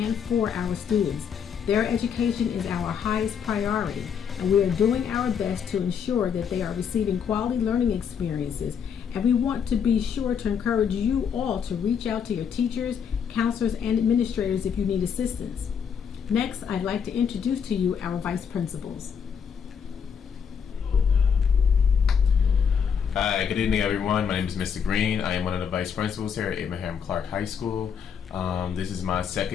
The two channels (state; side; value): quieter; right; 7.2 dB